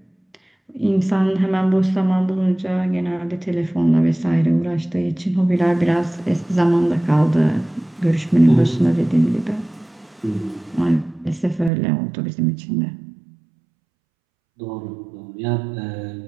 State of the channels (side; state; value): left; drops out; at 11.7 s